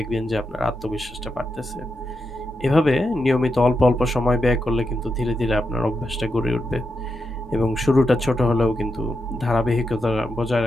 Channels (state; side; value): normal; both; correlation 0.85